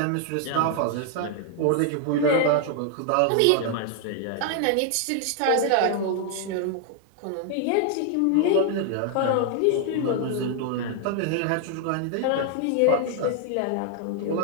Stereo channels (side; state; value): both; different; correlation 0.00